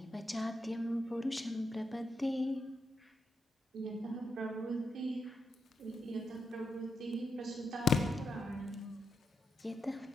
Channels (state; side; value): normal; both; correlation 0.83